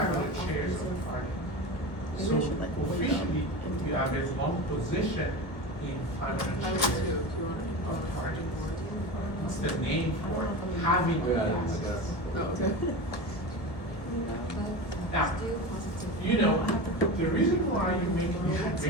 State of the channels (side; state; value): right; late; 1.1 ms